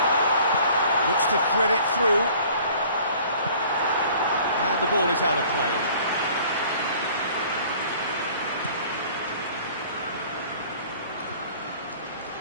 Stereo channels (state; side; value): inverted; both; correlation -0.51